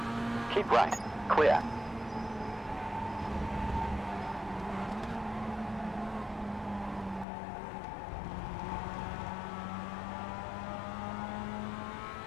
Keep right. Clear.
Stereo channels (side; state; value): right; drops out; at 7.2 s